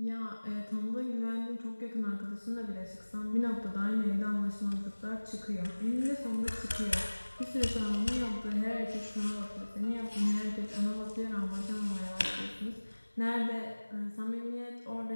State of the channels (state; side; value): inverted; both; correlation -1.00